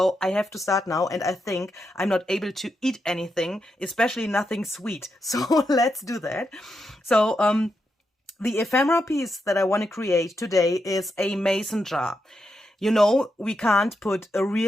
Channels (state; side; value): normal; both; correlation 0.84